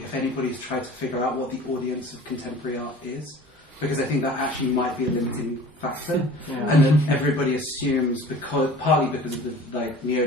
if anybody's tried to figure out what the audience of contemporary art is, because I think that actually might be a limiting factor, and then everybody assumes, partly because of the like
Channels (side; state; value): both; normal; correlation 0.43